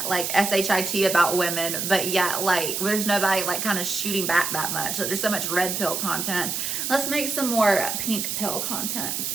like shit about women, but yet like there's nobody like kind of shooting back that much. Like, there's so much red pill content. Let's make some more pink pill content.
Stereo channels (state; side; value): noise; right; hiss, 2 dB below the sound